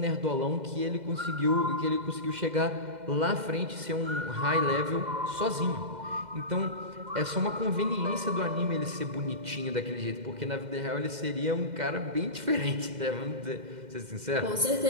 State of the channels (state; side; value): late; left; 2.1 ms